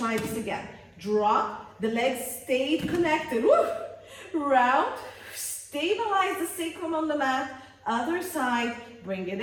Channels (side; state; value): both; identical; correlation 1.00